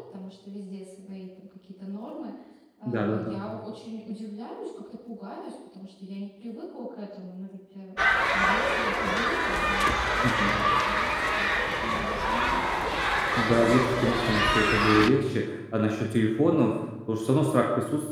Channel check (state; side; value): identical; both; correlation 1.00